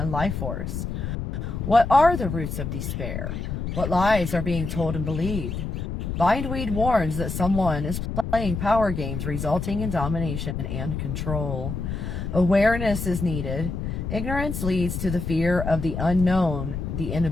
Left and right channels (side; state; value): left; noise; rumble, 4 dB below the sound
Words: life force? What are the roots of despair? What lies are being told and believed? Bindweed warns that someone is playing power games resulting in domination and control. Awareness is needed. Ignorance leads to the fear of the unknown. The